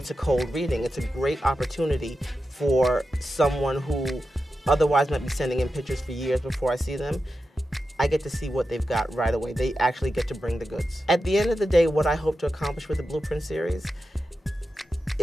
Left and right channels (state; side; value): normal; both; correlation 0.90